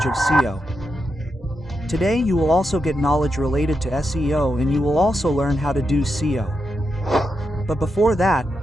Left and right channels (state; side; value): normal; both; correlation 0.85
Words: of SEO. Today you will also get knowledge related to SEO, and you will also learn how to do SEO. But before that,